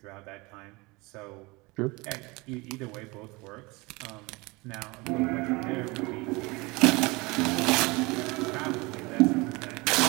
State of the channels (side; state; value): left; quieter; 24.7 dB